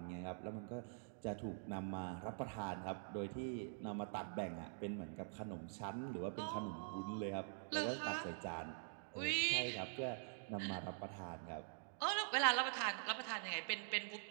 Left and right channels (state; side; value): silent; left; digital silence